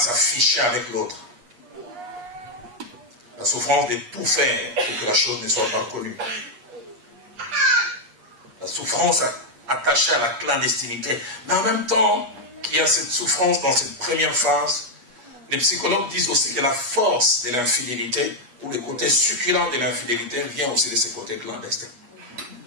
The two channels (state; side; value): late; left; 8.4 ms